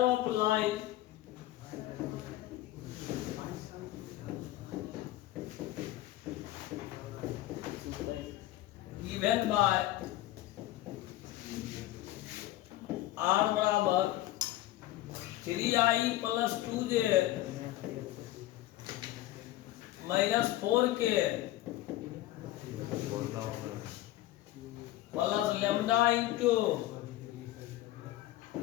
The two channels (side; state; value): right; quieter; 15.4 dB